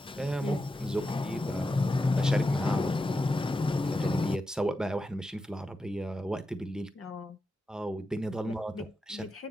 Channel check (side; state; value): both; normal; correlation 0.89